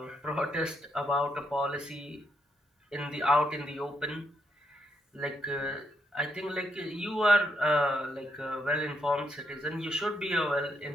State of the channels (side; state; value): both; normal; correlation 0.77